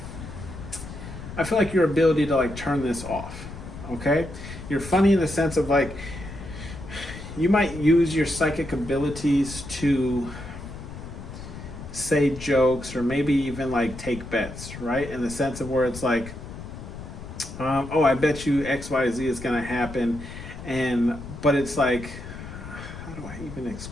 I feel like your ability to like turn this off, okay? You're funny in the sense of like, you might use your psychic abilities to say jokes or maybe even like take bets, right? In the sense of where it's like, oh, I bet you XYZ is gonna happen. But it's like, how do I even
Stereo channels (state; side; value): noise; left; rumble, 11 dB below the sound